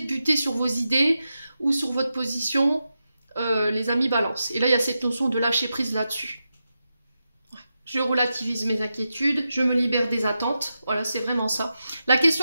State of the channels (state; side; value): inverted; both; correlation -0.89